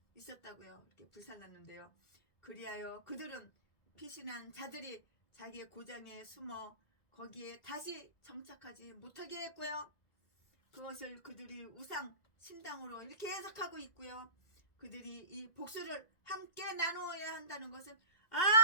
이렇게 불살랐는데요. 그리하여 그들은 피신한 자들이 자기의 고장에 숨어 거기에 다시 정착하지 못하게 했고요. 그것을 그들이 우상 신당으로 이렇게 해석하고 있고요. 그들이 이 복수를 함께 나누어야 한다는 것은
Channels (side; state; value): right; late; 2.0 ms